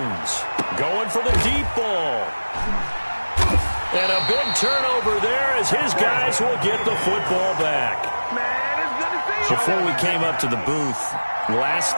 going for the deep ball. And a big turnover there as his guys will get the football back. Before we came up to the booth, last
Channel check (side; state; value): both; inverted; correlation -1.00